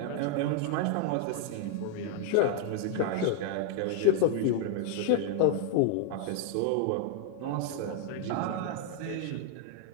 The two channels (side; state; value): both; different; correlation 0.00